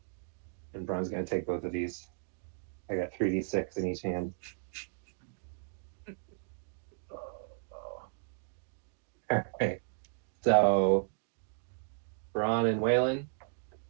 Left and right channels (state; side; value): silent; left; 55 dB below the other